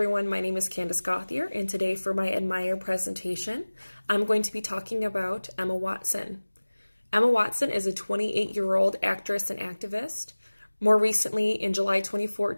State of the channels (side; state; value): both; inverted; correlation -1.00